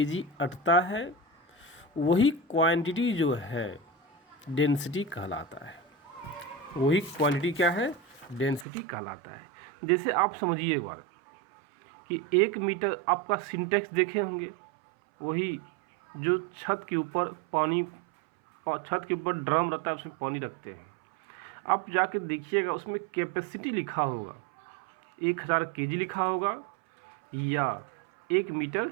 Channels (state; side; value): drops out; left; at 8.7 s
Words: अटता है, वही क्वांटिटी जो है डेंसिटी कहलाता है। वही क्वांटिटी क्या है, डेंसिटी कहलाता है। जैसे आप समझिए एक बार कि 1 मीटर आपका सिंटेक्स देखे होंगे, वही जो छत के ऊपर ड्रम रहता है, उसमें पानी रखते हैं। आप जाके देखिएगा उसमें कैपेसिटी लिखा होगा, 1000 केजी लिखा होगा या 1 मीटर